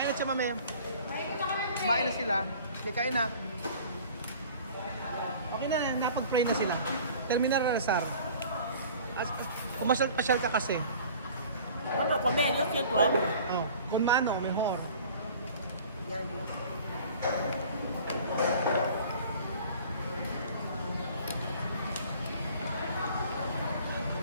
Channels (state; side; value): inverted; both; correlation -0.47